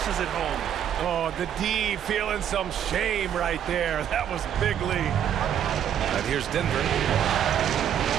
it home. Oh, the D feeling some shame right there. That was big lead. And here's Denver.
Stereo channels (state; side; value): quieter; left; 9.6 dB